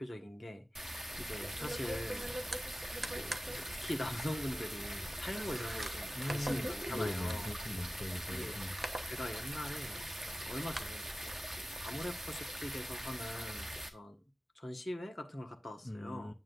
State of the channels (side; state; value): both; normal; correlation 0.96